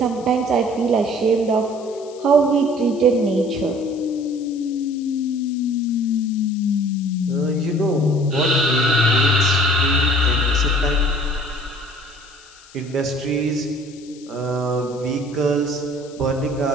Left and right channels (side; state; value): left; noise; hiss, 23 dB below the sound